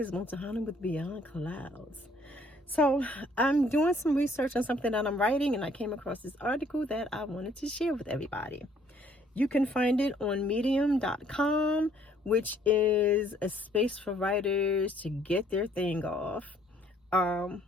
Montahana with Beyond Clouds. So, I'm doing some research on something that I'm writing, and I came across this article that I wanted to share with everybody. You can find it on medium.com, which is a space for writers to get their thing off. I'm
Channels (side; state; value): both; normal; correlation 0.62